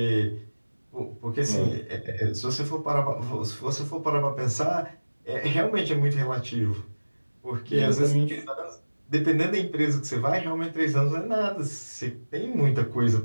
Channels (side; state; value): both; inverted; correlation -1.00